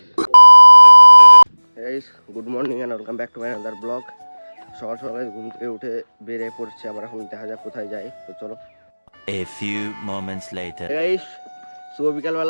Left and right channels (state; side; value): inverted; both; correlation -1.00